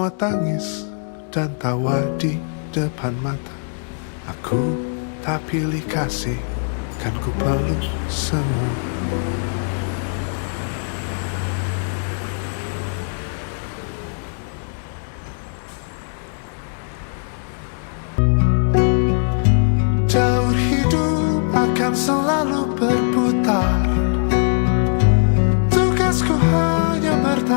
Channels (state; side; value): silent; right; digital silence